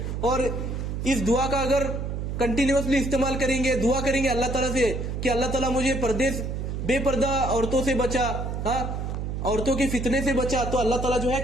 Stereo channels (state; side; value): noise; right; hum, 4 dB below the sound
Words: और इस दुआ का अगर कंटिन्यूअसली इस्तेमाल करेंगे, दुआ करेंगे अल्लाह ताला से कि अल्लाह ताला मुझे बेपर्दा औरतों से बचा, औरतों के फितने से बचा, तो अल्लाह ताला जो है